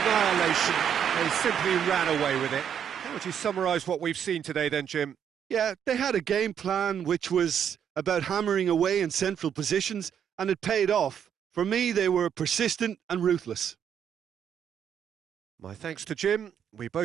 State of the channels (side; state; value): left; quieter; 8.5 dB